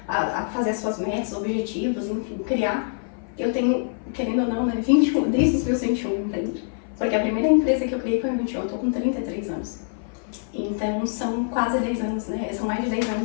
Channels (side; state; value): right; silent; 55 dB below the other